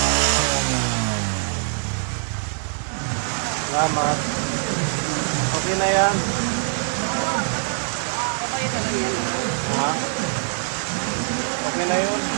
Salamat. Okay na yan. Ha? Okay na yun.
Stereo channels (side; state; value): left; silent; digital silence